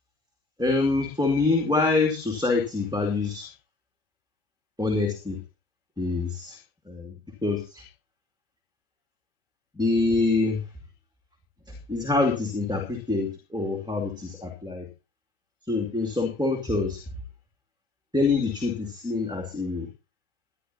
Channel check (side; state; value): right; quieter; 3.1 dB